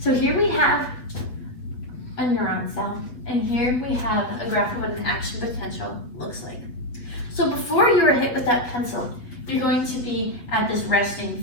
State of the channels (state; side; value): late; right; 8.3 ms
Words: here we have a neuron cell, and here we have a graph of what an action potential looks like. So before you are hit with that pencil, you're going to be at this resting